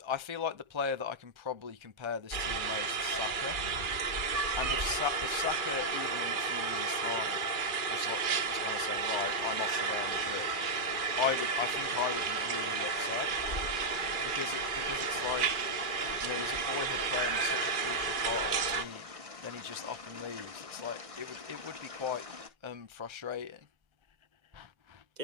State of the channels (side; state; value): left; late; 2.3 ms